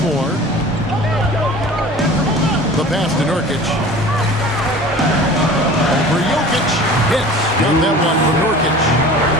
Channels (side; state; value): both; normal; correlation 0.41